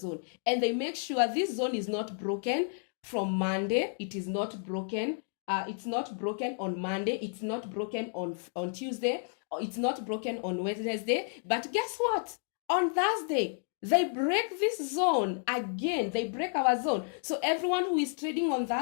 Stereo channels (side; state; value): right; silent; 57 dB below the other